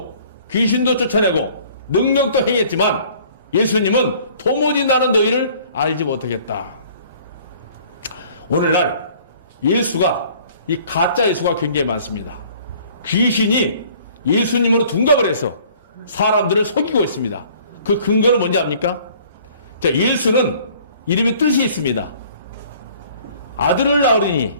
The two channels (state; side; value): inverted; both; correlation -0.54